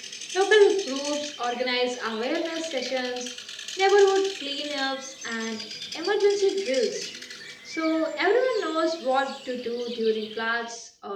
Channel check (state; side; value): identical; both; correlation 1.00